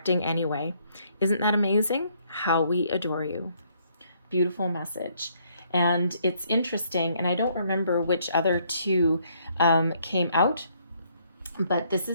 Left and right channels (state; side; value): inverted; both; correlation -0.68